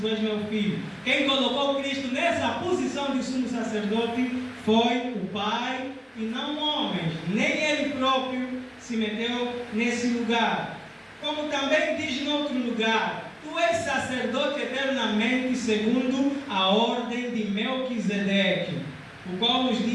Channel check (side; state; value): both; identical; correlation 1.00